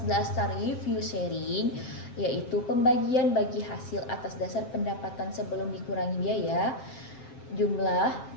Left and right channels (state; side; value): late; right; 7.7 ms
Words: dasar review sharing, yaitu pembagian bagi hasil atas dasar pendapatan sebelum dikurangi biaya. Jumlah